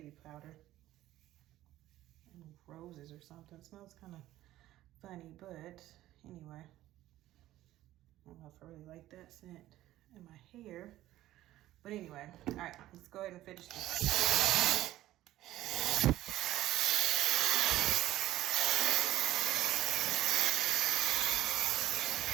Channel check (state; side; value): quieter; left; 14.8 dB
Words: powder. Roses or something. It smells kind of funny, but anyway, I don't know if I really like that scent in my hair, but anyway, all right, let's go ahead and finish this.